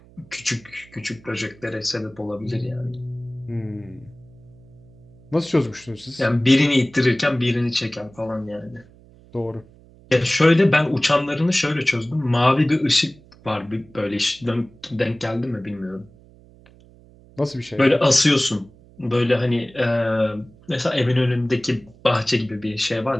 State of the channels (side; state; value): right; noise; hum, 25 dB below the sound